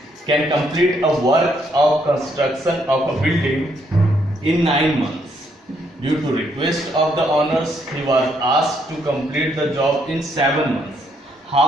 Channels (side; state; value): both; normal; correlation 0.72